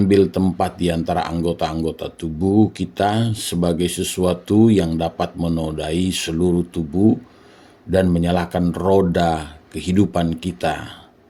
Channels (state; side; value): identical; both; correlation 1.00